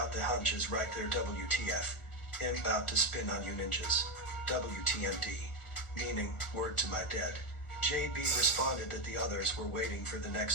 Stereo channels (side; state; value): right; late; 1.4 ms